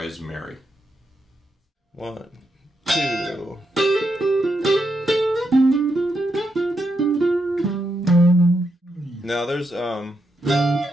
Mary. 1, 2. Now there's a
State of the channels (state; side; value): normal; both; correlation 0.82